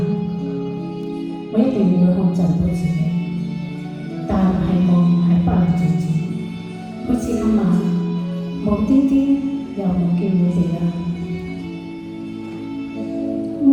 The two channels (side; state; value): both; identical; correlation 1.00